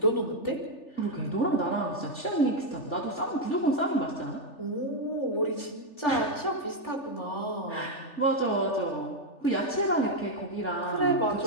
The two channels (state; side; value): late; right; 3.4 ms